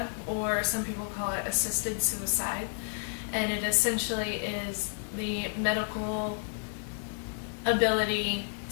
or some people call it assisted suicide, and it essentially is the medical ability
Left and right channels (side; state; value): right; silent; digital silence